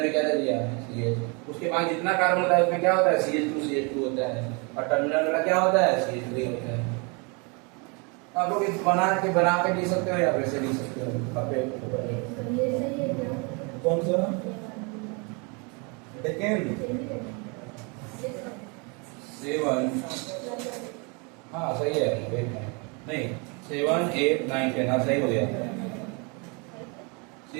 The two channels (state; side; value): quieter; left; 32.3 dB